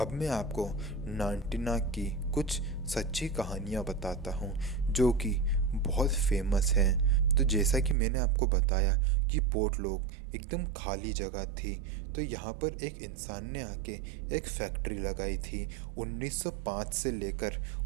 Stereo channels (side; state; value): left; drops out; at 8.0 s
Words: मैं आपको नानटीनाक की कुछ सच्ची कहानियाँ बताता हूँ जो कि बहुत फेमस हैं। तो जैसा कि मैंने आपको बताया कि पोर्टलॉक एकदम खाली जगह थी, तो यहाँ पर एक इंसान ने आके एक फैक्ट्री लगाई थी। 1905 से लेकर